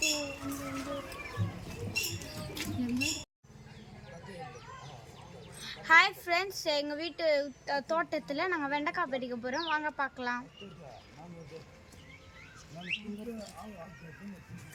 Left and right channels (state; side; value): identical; both; correlation 1.00